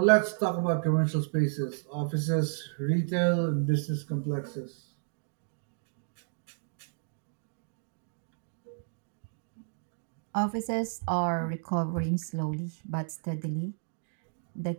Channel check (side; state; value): left; silent; digital silence